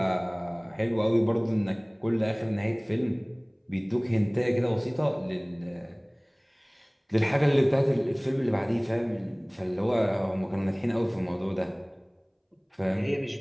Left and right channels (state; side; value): identical; both; correlation 1.00